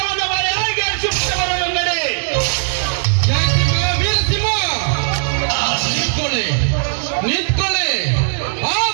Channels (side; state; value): left; silent; digital silence